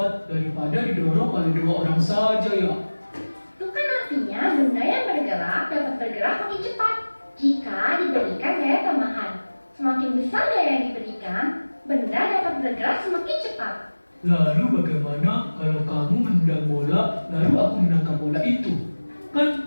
daripada didorong oleh 2 orang saja ya. Itu kan artinya benda yang bergerak dapat bergerak makin cepat jika diberikan gaya tambahan. Semakin besar gaya yang diberikan, benda dapat bergerak semakin cepat. Lalu bagaimana kalau kamu menendang bola, lalu aku menangkap bola itu?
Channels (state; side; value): inverted; both; correlation -1.00